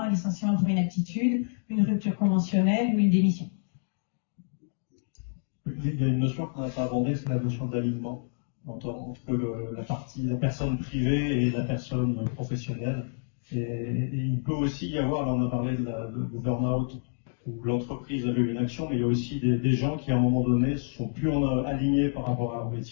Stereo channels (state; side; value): silent; right; digital silence